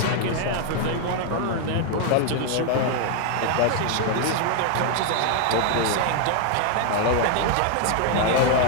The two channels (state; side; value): different; both; correlation 0.00